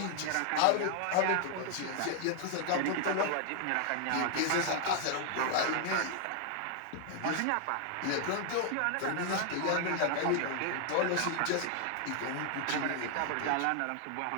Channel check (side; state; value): both; different; correlation 0.00